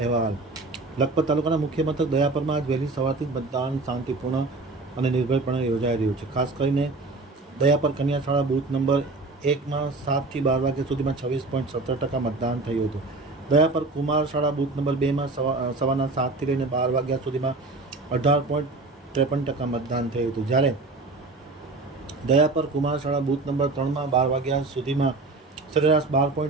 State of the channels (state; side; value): quieter; left; 3.4 dB